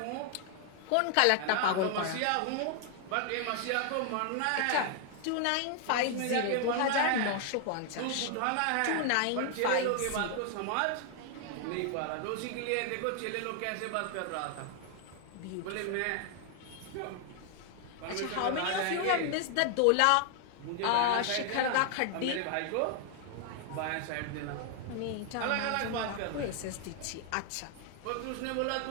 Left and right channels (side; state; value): both; different; correlation 0.00